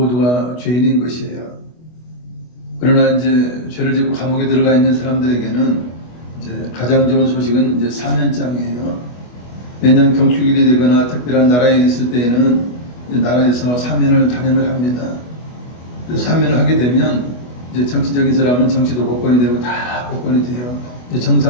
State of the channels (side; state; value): right; late; 24 ms